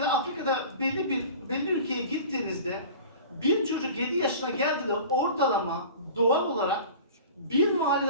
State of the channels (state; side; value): inverted; both; correlation -0.39